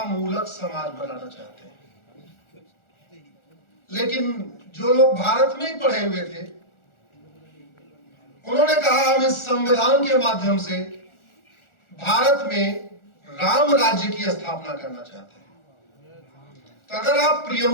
मूलक समाज बनाना चाहते हैं। लेकिन जो लोग भारत में ही पढ़े हुए थे, उन्होंने कहा हम इस संविधान के माध्यम से भारत में राम राज्य की स्थापना करना चाहते हैं। तो अगर आप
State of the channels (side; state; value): right; late; 1.4 ms